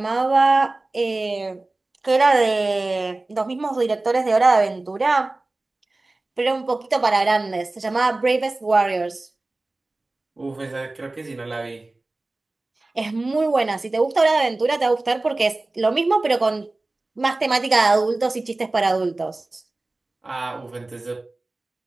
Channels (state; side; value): quieter; left; 3.0 dB